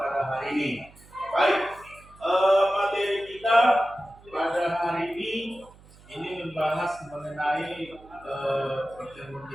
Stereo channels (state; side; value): noise; right; hum, 24 dB below the sound